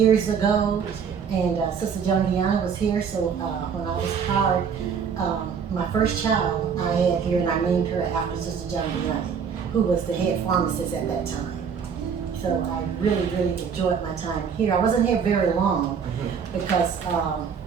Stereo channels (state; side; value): quieter; left; 6.7 dB